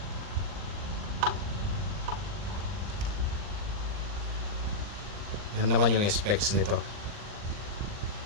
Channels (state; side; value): late; left; 39 ms